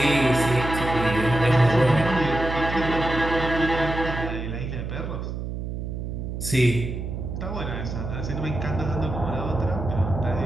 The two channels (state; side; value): noise; right; hum, 5 dB below the sound